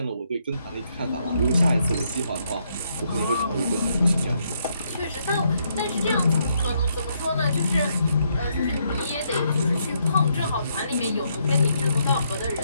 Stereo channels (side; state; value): both; inverted; correlation -0.75